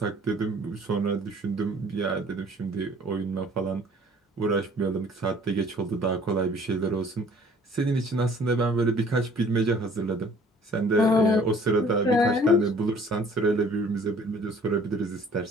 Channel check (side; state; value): both; normal; correlation 0.54